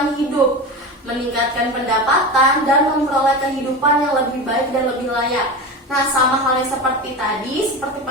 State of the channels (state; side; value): normal; both; correlation 0.25